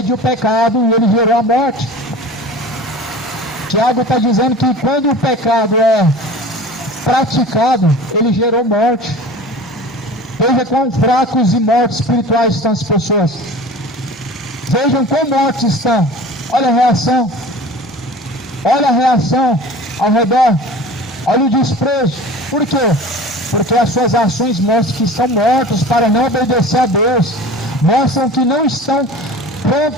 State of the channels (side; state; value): both; normal; correlation 0.39